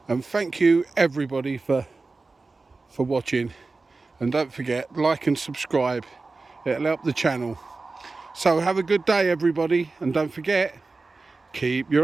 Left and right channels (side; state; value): left; quieter; 3.7 dB